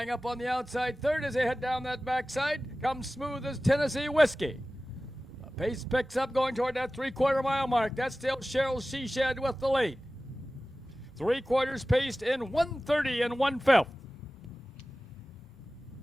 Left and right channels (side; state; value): both; normal; correlation 0.96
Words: up on the outside third as they head down that backside comes Smooth as Tennessee Whiskey. The pace picks up going toward that 3/4 mile mark. That's still Cheryl Shed with the lead. 3/4 paced in 1:30 and 1/5.